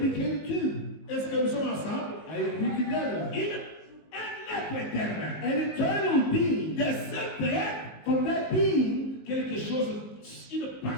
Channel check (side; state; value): right; late; 19 ms